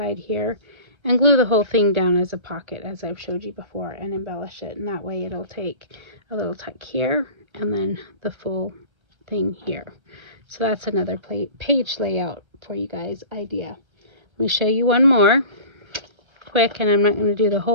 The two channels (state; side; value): late; left; 1.3 ms